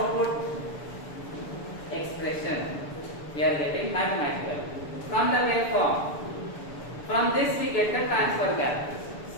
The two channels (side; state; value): right; late; 6.9 ms